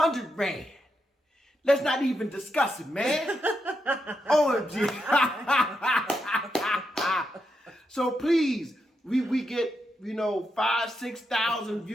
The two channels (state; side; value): normal; both; correlation 0.83